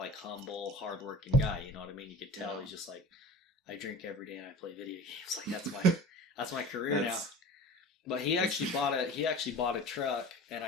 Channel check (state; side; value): normal; both; correlation 0.38